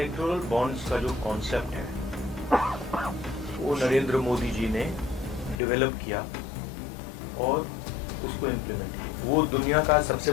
बॉन्ड्स का जो कॉन्सेप्ट है वो नरेंद्र मोदी जी ने डेवलप किया और उसको इम्प्लीमेंट किया. वो दुनिया का सबसे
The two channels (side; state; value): right; drops out; at 5.6 s